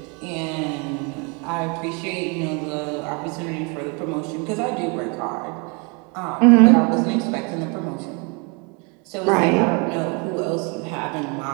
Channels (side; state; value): left; quieter; 32.6 dB